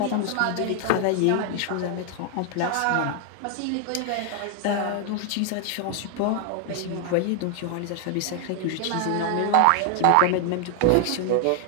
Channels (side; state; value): both; different; correlation 0.00